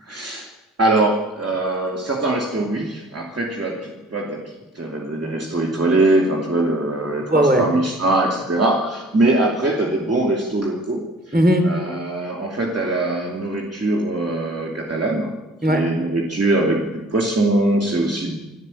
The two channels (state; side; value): normal; both; correlation 0.50